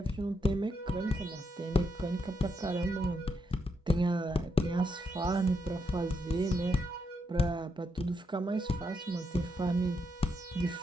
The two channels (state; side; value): normal; both; correlation 0.80